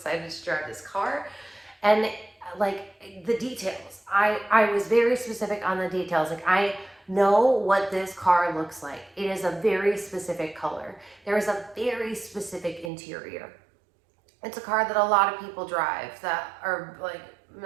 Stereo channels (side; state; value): left; drops out; at 12.9 s